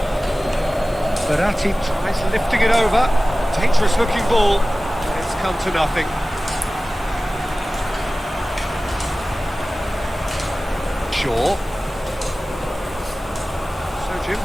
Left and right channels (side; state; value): both; normal; correlation 0.97